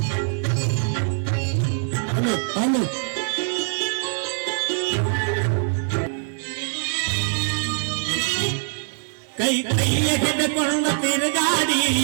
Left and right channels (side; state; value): left; silent; digital silence